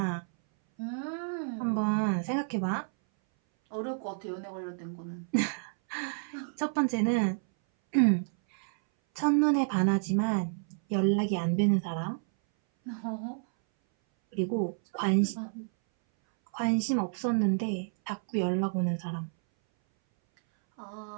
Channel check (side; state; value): left; silent; 58 dB below the other